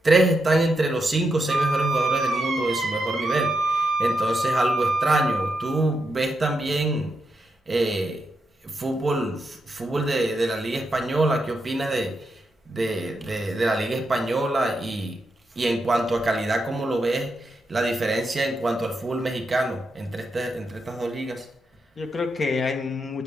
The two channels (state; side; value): normal; both; correlation 0.84